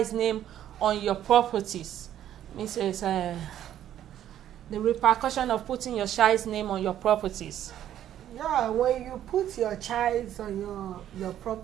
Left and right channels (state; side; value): quieter; left; 11.3 dB